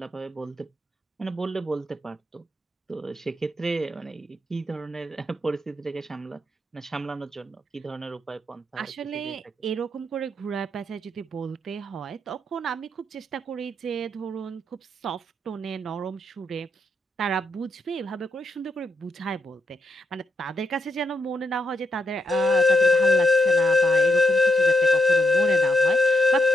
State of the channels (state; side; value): normal; both; correlation 0.80